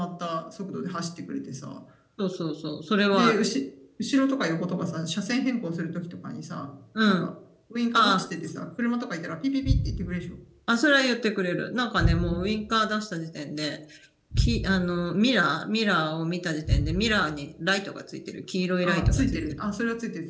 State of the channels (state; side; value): identical; both; correlation 1.00